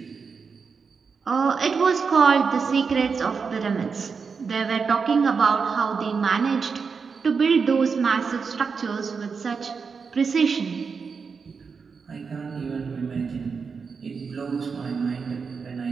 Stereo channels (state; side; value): quieter; left; 5.4 dB